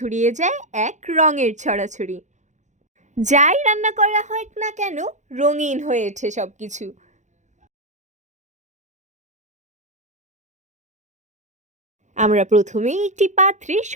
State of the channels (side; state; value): left; late; 0.35 ms